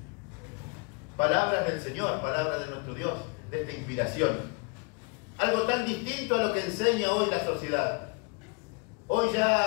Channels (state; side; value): quieter; right; 31.9 dB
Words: Palabras del Señor, palabras de nuestro Dios, de esta inspiración. Algo tan distinto a lo que enseña hoy la sociedad. Hoy